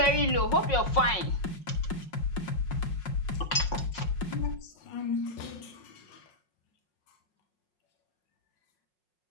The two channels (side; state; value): right; late; 5.5 ms